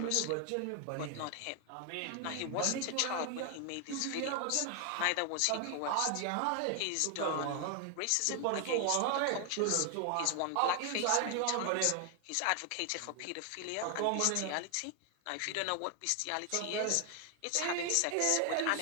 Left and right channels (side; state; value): both; different; correlation 0.00